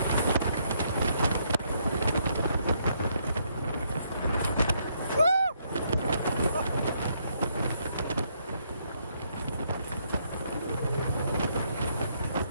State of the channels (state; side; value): inverted; both; correlation -0.73